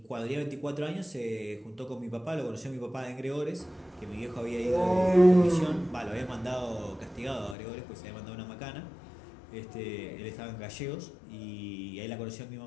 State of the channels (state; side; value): drops out; right; at 7.6 s